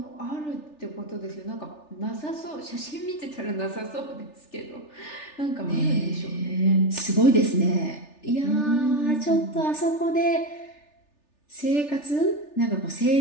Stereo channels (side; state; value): right; late; 3.4 ms